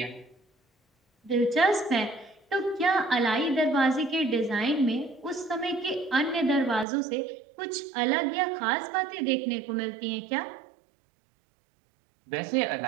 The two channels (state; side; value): drops out; left; at 6.9 s